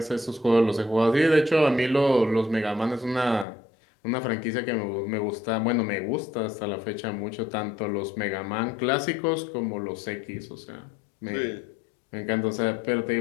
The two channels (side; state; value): right; drops out; at 3.5 s